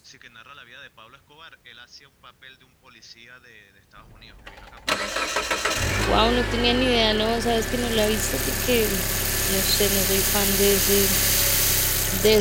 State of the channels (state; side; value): identical; both; correlation 1.00